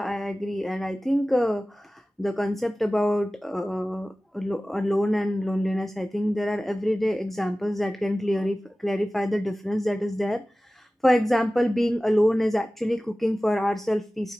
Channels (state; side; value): normal; both; correlation 0.97